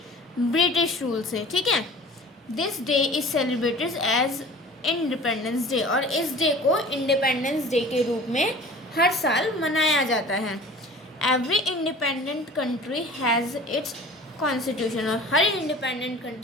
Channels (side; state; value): both; normal; correlation 0.43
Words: ब्रिटिश रूल से। ठीक है, this day is celebrated as independence day, और इस डे को इंडिपेंडेंस डे के रूप में हर साल मनाया जाता है। Every independent country has its constitution, और हर इंडिपेंडेंट